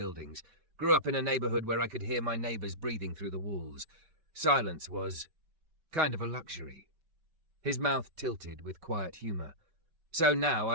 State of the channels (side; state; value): left; late; 5.2 ms